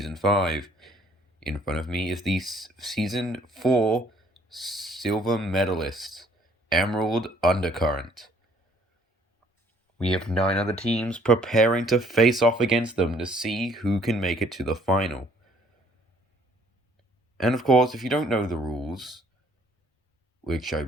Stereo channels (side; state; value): both; normal; correlation 0.62